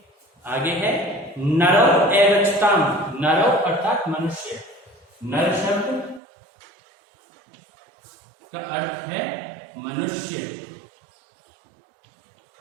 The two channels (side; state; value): left; drops out; at 6.2 s